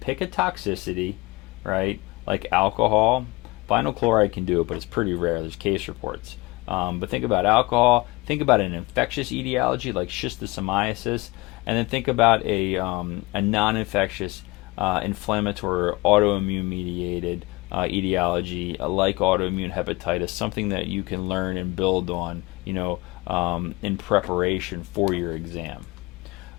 a toxicity, right? Like alcohol. Vinyl chloride can do it, but it's pretty rare. There's case reports. But think about alcohol. Think about an infectious etiology like schistosomiasis, and then think about a non-infectious inflammatory or autoimmune mediated etiology like autoimmune hepatitis, something that you can learn and build on, in preparation for your exam.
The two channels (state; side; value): quieter; right; 23.2 dB